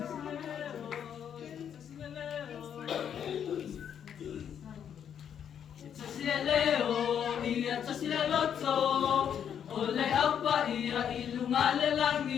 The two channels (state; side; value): quieter; right; 8.6 dB